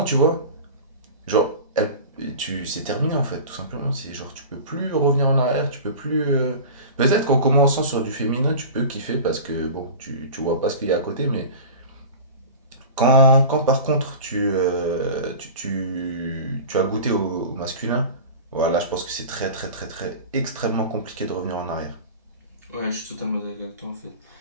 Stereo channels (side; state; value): both; inverted; correlation -0.34